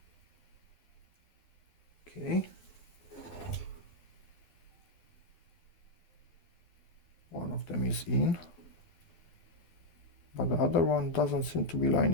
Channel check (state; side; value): late; right; 12 ms